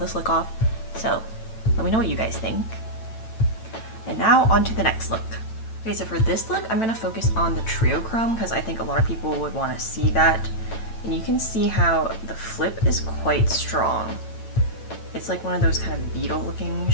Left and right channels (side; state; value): right; late; 9.0 ms